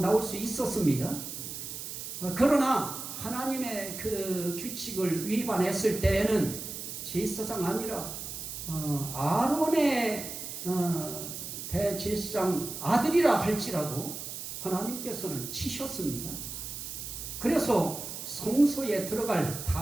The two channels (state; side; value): noise; right; hiss, 8 dB below the sound